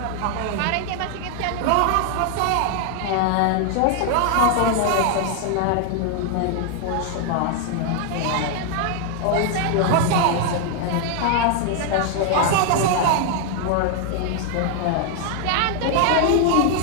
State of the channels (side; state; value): both; different; correlation 0.00